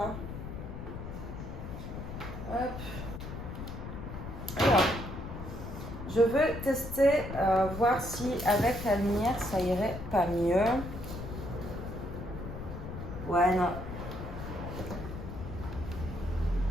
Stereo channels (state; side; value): noise; left; rumble, 8 dB below the sound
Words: Hop. Alors, je veux tester, voir si avec la lumière ça irait pas mieux. Ouais, non.